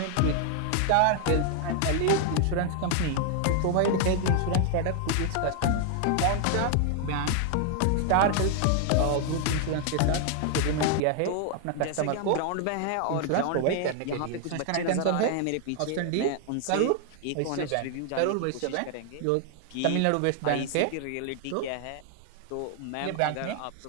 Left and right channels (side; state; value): both; different; correlation 0.00